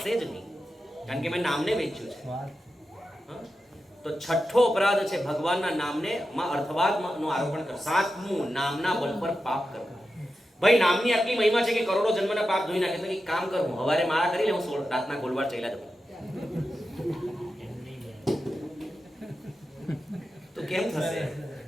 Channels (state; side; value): normal; both; correlation 0.91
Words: જ નહીં, કારણ કે મેં નામને વેચ્યું છે. તો છઠ્ઠો અપરાધ છે ભગવાનના નામને માં અર્થવાદનું આરોપણ કરવું. સાતમું, નામના બળ પર પાપ કરવું. ભાઈ નામની આટલી મહિમા છે કે કરોડો જન્મના પાપ ધોઈ નાખે. તો એક કામ કરું, હવારે માળા કરી લે, હું રાતના ગોલવાર ચાલ્યા જવું. તો કેમ થશે?